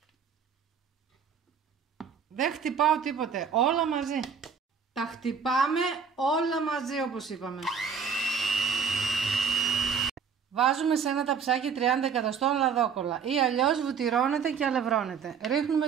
Δεν χτυπάω τίποτε, όλα μαζί. Τα χτυπάμε όλα μαζί όπως είπαμε. Βάζουμε σε ένα ταψάκι 30 εκατοστών λαδόκολλα ή αλλιώς βουτυρώνεται και αλευρώνεται. Ρίχνουμε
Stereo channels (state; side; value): quieter; left; 6.4 dB